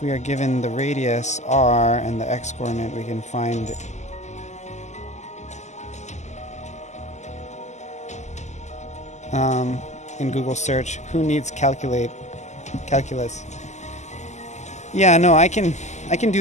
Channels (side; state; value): right; late; 0.33 ms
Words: we are given the radius r and the x-coordinate, we can find in Google search, who needs calculus? Yeah, no, I can